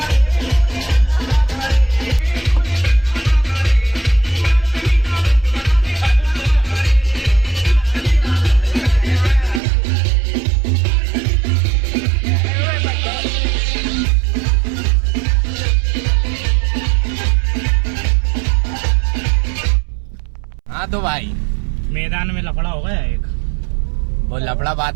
तो भाई मैदान में लफड़ा हो गया एक। वो लफड़ा बाद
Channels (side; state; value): left; drops out; at 9.6 s